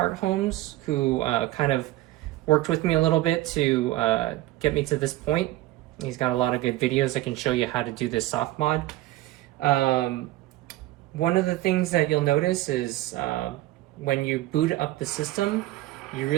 Homes, who kind of worked with me a little bit to get me to this point. He's got a lot of good videos that can show you how to do this soft mod. One of the things that you'll notice is when you boot up the system, you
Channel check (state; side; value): quieter; left; 16.6 dB